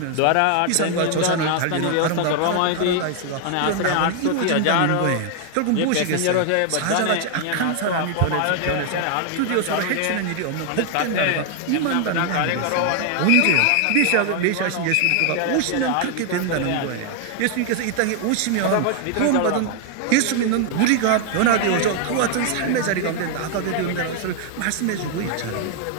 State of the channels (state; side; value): different; both; correlation 0.00